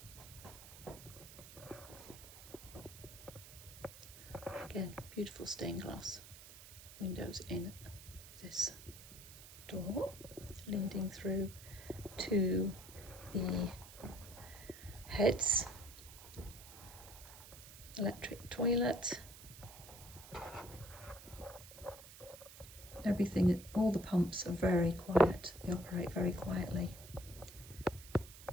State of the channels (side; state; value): right; noise; hiss, 16 dB below the sound